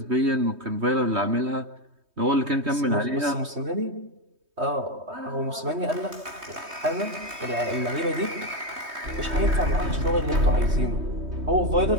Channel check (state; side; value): late; left; 3.2 ms